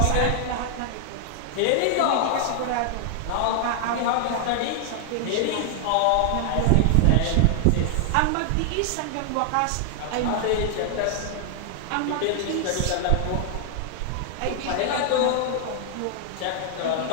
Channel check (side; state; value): both; different; correlation 0.00